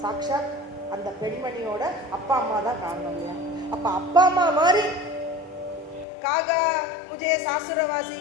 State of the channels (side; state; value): right; drops out; at 6.1 s